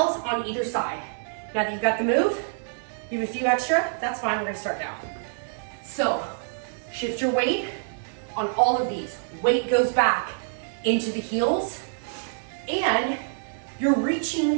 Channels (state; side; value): silent; left; 59 dB below the other